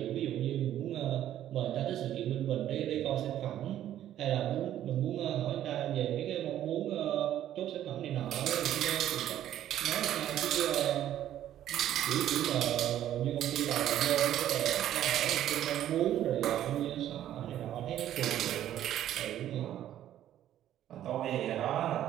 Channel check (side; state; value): left; quieter; 11.8 dB